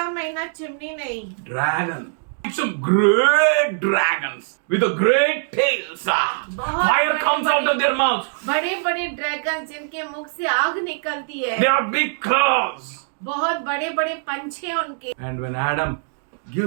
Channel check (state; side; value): silent; left; digital silence